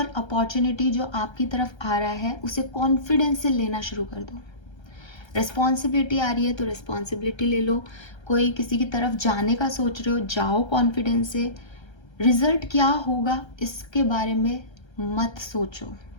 अपॉर्चुनिटी जो आपकी तरफ आ रहा है उसे कॉन्फिडेंस से लेना शुरू कर दो। रिस्पॉन्सिबिलिटी आ रही है तो रिस्पॉन्सिबिलिटी ले लो। कोई किसी की तरफ जाने का सोच रहे हो, जाओ कॉन्फिडेंस से। रिजल्ट क्या होगा इसके बारे में मत सोचो,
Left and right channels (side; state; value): right; late; 1.3 ms